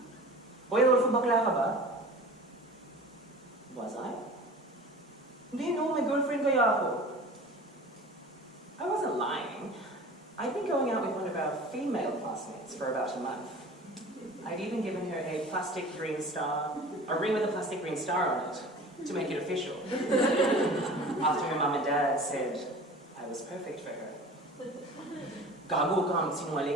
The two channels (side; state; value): both; normal; correlation 0.40